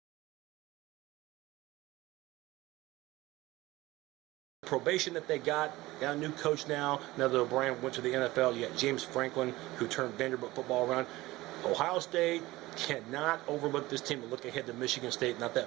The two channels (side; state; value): left; quieter; 18.9 dB